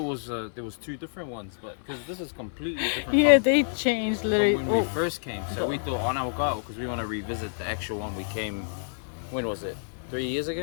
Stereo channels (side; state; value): right; silent; digital silence